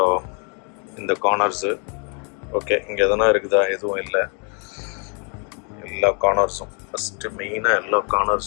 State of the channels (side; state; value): right; quieter; 37.4 dB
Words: இந்த கார்னர்ஸு ஓகே, இங்கே எதனா இருக்குதா? எதுவும் இல்லை. எல்லா கார்னர்ஸும் ஃபஸ்ட்டு மெயினாக எல்லா